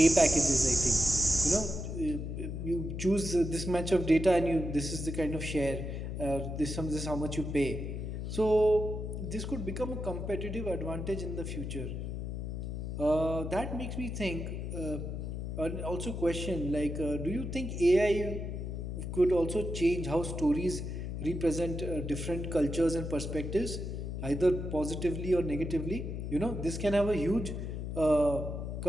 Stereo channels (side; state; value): left; noise; hum, 5 dB below the sound